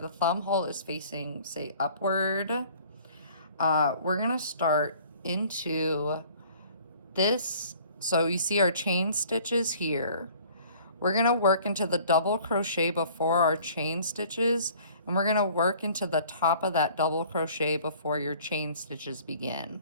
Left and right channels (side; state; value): both; inverted; correlation -0.52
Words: thumb hole is facing, say, upward, we're going to start into this. So you see our chain stitches here. We're going to work into the double crochet before our chain stitches, and we're going to work into the top of that double crochet before your chain stitches begin.